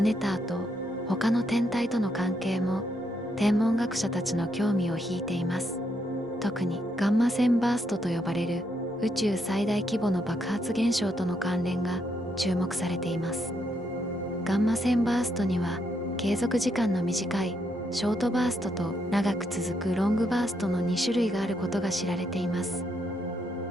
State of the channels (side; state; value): both; normal; correlation 0.77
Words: ネターと他の天体との関係も天文学者たちの興味を引いています。特にガンマ線バーストと呼ばれる宇宙最大規模の爆発現象との関連が注目されています。ガンマ線バーストには継続時間の短いショートバーストと長く続くロングバーストの2種類があることが知られています。